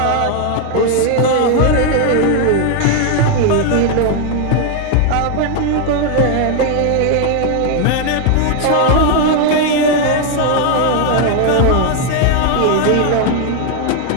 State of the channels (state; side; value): different; both; correlation 0.01